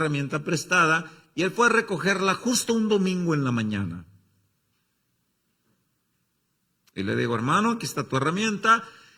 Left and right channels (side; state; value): both; normal; correlation 0.97